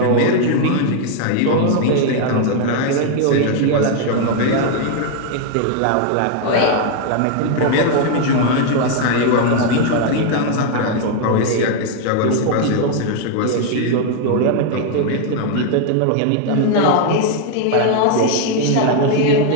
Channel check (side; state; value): both; different; correlation 0.00